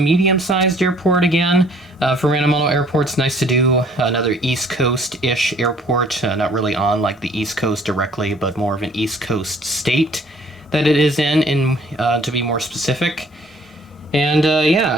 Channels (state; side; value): normal; both; correlation 0.58